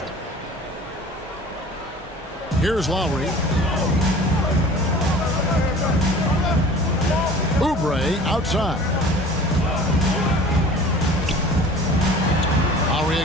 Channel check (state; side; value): normal; both; correlation 0.44